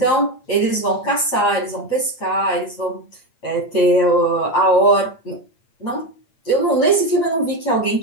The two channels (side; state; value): right; late; 8.6 ms